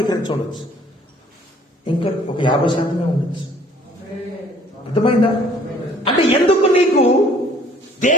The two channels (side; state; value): both; normal; correlation 0.57